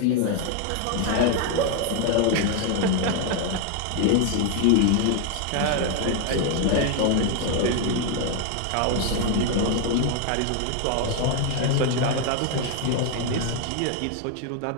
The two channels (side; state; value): both; different; correlation 0.01